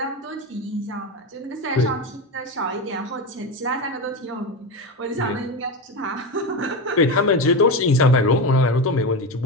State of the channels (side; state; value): both; normal; correlation 0.18